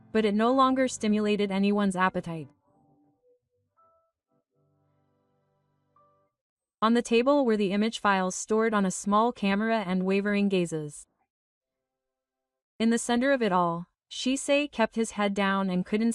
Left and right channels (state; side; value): identical; both; correlation 1.00